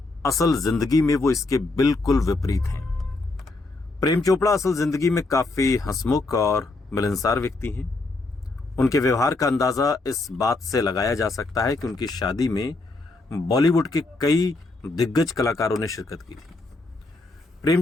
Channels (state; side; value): quieter; right; 3.2 dB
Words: असल जिंदगी में वो इसके बिल्कुल विपरीत हैं। प्रेम चोपड़ा असल जिंदगी में काफी हंसमुख और मिलनसार व्यक्ति हैं। उनके व्यवहार का अंदाजा इस बात से लगाया जा सकता है कि उनकी शादी में बॉलीवुड के कई दिग्गज कलाकारों ने शिरकत की थी। प्रेम